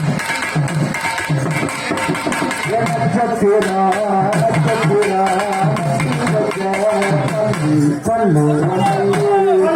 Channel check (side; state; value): both; identical; correlation 1.00